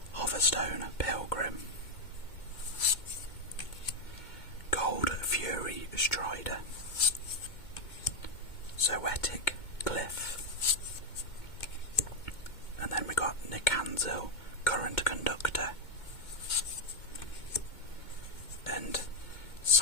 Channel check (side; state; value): right; late; 2.2 ms